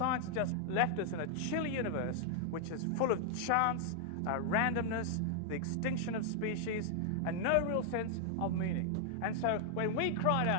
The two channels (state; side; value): different; both; correlation 0.00